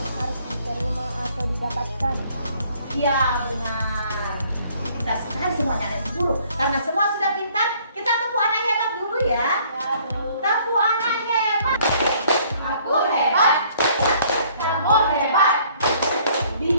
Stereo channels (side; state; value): both; inverted; correlation -0.60